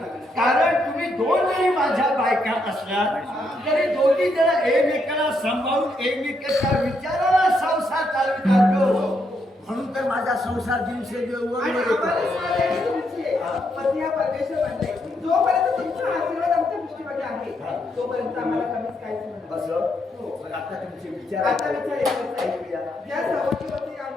कारण तुम्ही दोन जरी माझ्या बायका असल्या तरी दोघी जण एकमेकाला सांभाळून एकमेकाच्या विचाराला संसार चालवितात म्हणून तर माझा संसार दिवसेंदिवस आणि आम्हाला सांगायचं तुमचे पती हा परमेश्वर बनलाय. जोपर्यंत तुमचा आशीर्वाद आमच्या दृष्टीमध्ये आहे तोपर्यंत आम्हाला कमीच काहीच नाही. बस मग आता तुमचे विचार आता विचार एकच आहे. ज्या सवतीवरती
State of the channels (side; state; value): both; normal; correlation 0.78